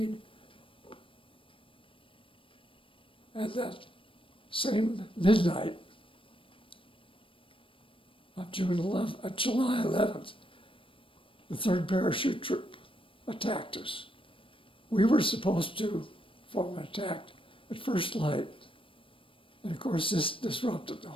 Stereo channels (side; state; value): right; late; 0.25 ms